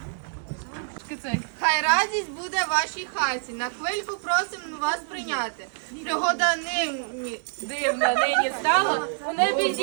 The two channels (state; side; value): silent; left; 57 dB below the other